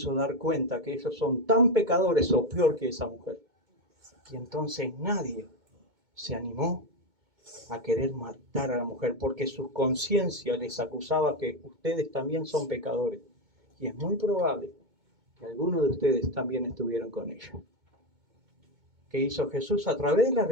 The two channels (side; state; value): left; late; 2.2 ms